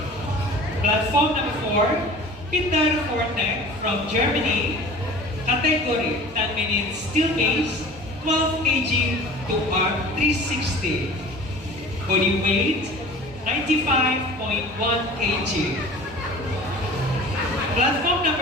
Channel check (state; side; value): normal; both; correlation 0.41